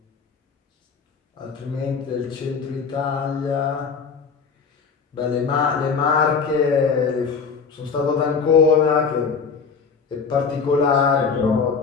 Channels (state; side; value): quieter; right; 5.5 dB